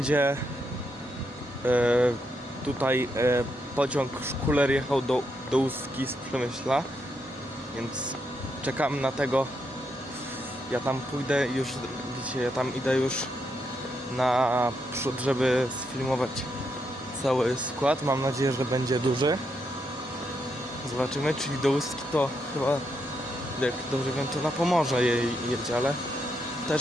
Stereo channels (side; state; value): both; normal; correlation 0.80